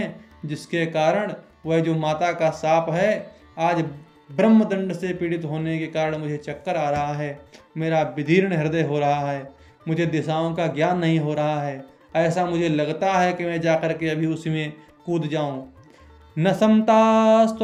जिसके कारण वह जो माता का शाप है, आज ब्रह्मदंड से पीड़ित होने के कारण मुझे चक्कर आ रहा है, मेरा विदीर्ण हृदय हो रहा है, मुझे दिशाओं का ज्ञान नहीं हो रहा है। ऐसा मुझे लगता है कि मैं जाकर के अभी उसी में कूद जाऊं। न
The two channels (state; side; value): identical; both; correlation 1.00